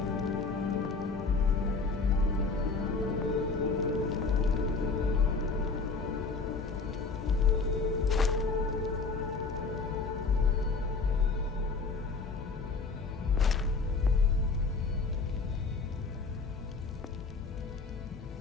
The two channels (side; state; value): right; quieter; 4.3 dB